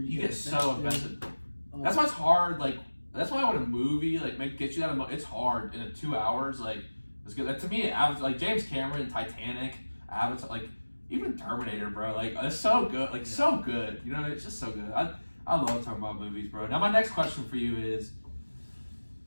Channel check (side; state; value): both; inverted; correlation -1.00